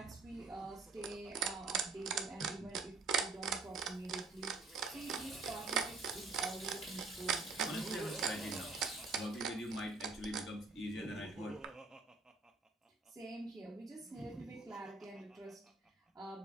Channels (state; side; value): quieter; left; 4.0 dB